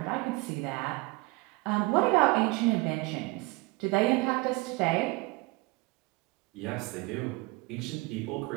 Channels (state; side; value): quieter; left; 23.9 dB